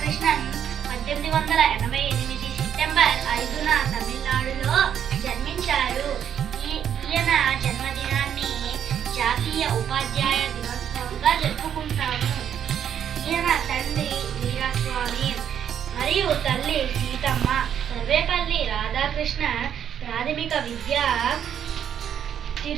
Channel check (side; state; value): left; quieter; 9.1 dB